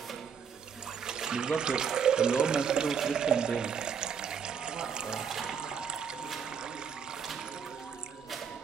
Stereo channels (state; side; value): quieter; left; 6.9 dB